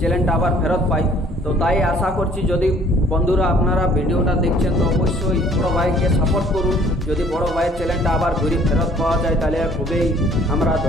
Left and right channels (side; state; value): both; normal; correlation 0.57